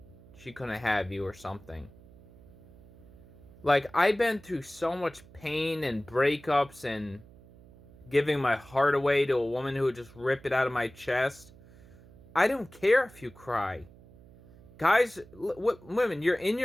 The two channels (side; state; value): right; noise; hum, 23 dB below the sound